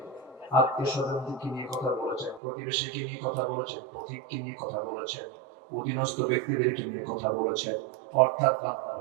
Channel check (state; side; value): drops out; left; at 2.4 s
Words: আত্মীয়-স্বজনকে নিয়ে কথা বলেছেন, প্রতিবেশীকে নিয়ে কথা বলেছেন, পথিককে নিয়ে কথা বলেছেন, অধীনস্থ ব্যক্তিদেরকে নিয়ে কথা বলেছেন। অর্থাৎ বান্দার